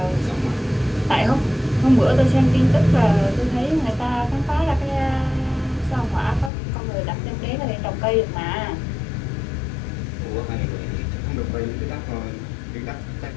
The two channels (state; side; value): drops out; right; at 6.5 s